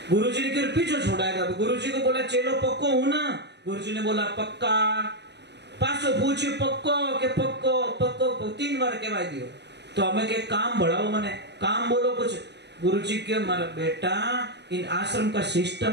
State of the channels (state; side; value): late; left; 0.50 ms